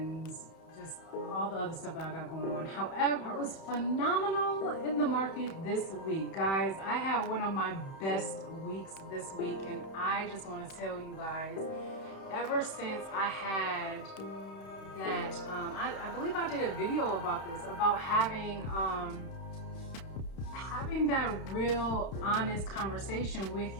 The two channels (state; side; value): late; right; 31 ms